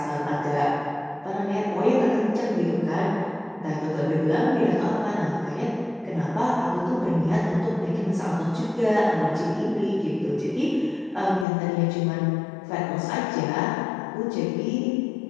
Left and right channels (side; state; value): right; drops out; at 11.5 s